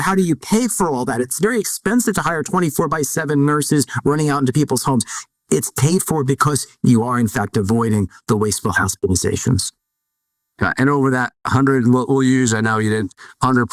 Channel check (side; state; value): both; identical; correlation 1.00